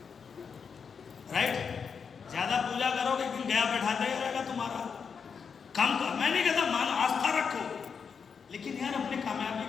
राइट? ज्यादा पूजा करोगे एक दिन गया बैठाते ही रहेगा तुम्हारा। कम कर, मैं नहीं कहता मान आस्था रखो, लेकिन यार अपने कामयाबी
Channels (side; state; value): right; quieter; 6.2 dB